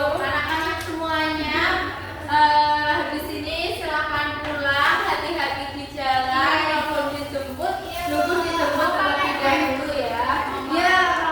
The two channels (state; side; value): identical; both; correlation 1.00